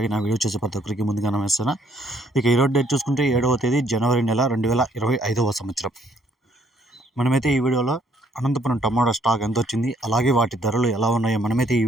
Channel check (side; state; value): both; normal; correlation 0.66